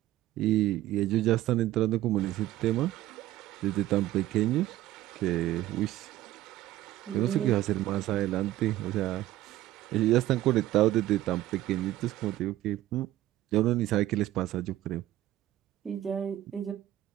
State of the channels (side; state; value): left; quieter; 14.8 dB